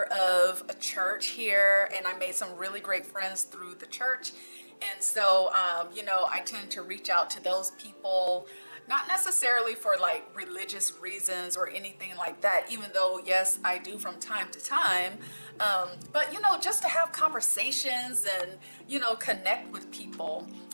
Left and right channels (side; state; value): both; inverted; correlation -1.00